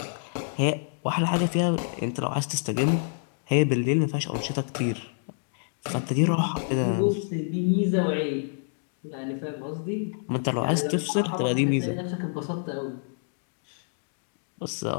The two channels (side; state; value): right; silent; digital silence